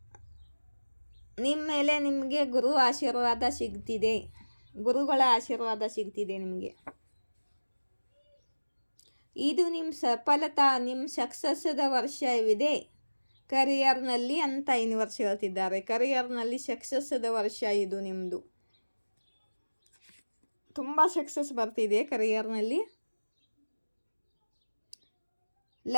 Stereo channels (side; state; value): both; inverted; correlation -1.00